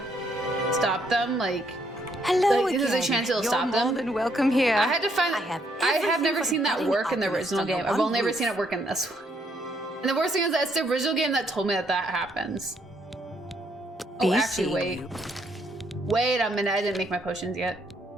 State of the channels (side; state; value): both; normal; correlation 0.71